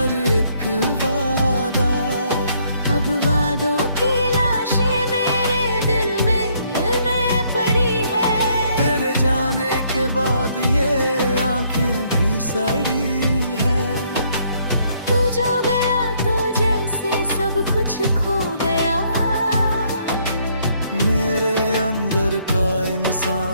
एक वादा। अब वादों की लाशें मेरे दिल में पड़ी है। तेरे जाने के बाद ये आंखें भी सड़ी है। तू जो गया तो जैसे सब कुछ खो गया। मेरे अंदर का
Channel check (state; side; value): inverted; both; correlation -0.68